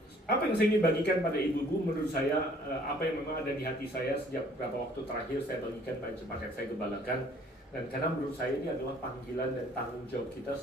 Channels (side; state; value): both; normal; correlation 0.57